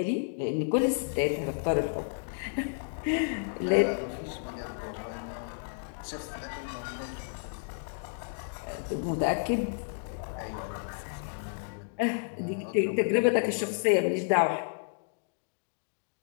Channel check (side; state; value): right; silent; digital silence